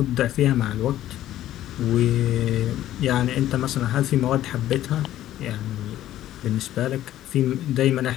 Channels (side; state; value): right; quieter; 13.2 dB